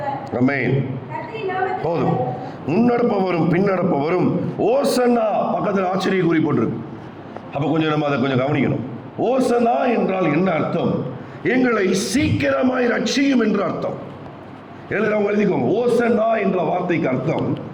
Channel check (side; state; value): both; identical; correlation 1.00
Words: ஆமென். போதும். முன்னடப்பவரும் பின்னடப்பவரும் ஓசன்னா பக்கத்தில் ஆச்சரிய குறி போட்டிருக்கு. அப்ப கொஞ்சம் நம்ம அதை கொஞ்சம் கவனிக்கணும். ஓசன்னா என்றால் என்ன அர்த்தம்? எங்களை சீக்கிரமாய் ரட்சியும் என்று அர்த்தம். எழுதுறவங்க எழுதிக்கோங்க. ஓசன்னா என்ற வார்த்தைக்கு அர்த்தம்